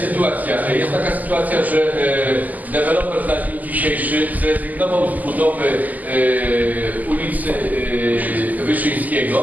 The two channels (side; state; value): left; late; 0.080 ms